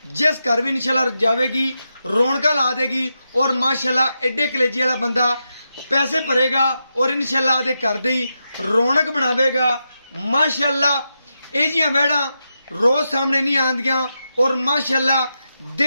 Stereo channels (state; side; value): inverted; both; correlation -0.87